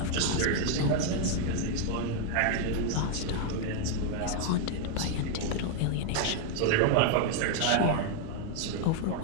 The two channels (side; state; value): both; different; correlation 0.00